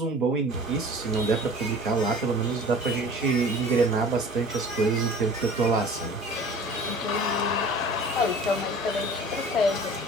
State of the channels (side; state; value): both; normal; correlation 0.44